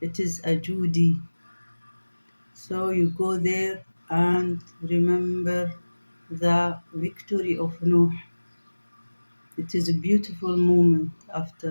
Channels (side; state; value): both; inverted; correlation -1.00